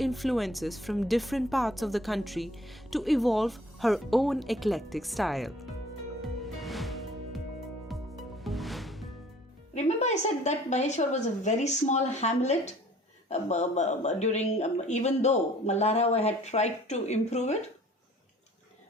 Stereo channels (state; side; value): normal; both; correlation 0.53